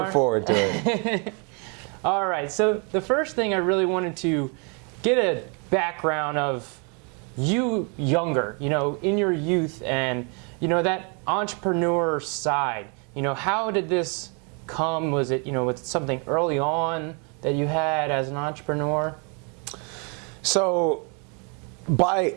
forward to it. All right, so the first thing I really wanted to get a background of you younger, in your youth, and, that entrepreneur side. How did this come? Was it, was it something early on that you had as an entrepreneur? So, by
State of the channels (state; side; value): quieter; left; 35.8 dB